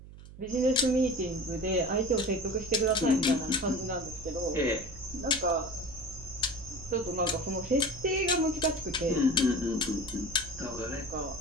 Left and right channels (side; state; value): right; noise; hum, 17 dB below the sound